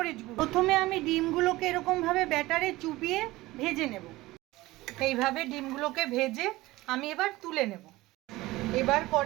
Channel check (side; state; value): left; quieter; 18.8 dB